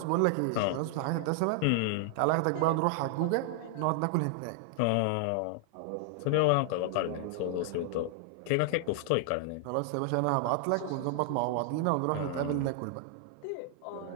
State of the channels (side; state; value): both; different; correlation 0.00